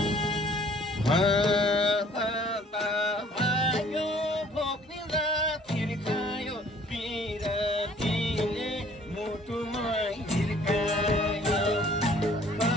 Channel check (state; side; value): normal; both; correlation 0.56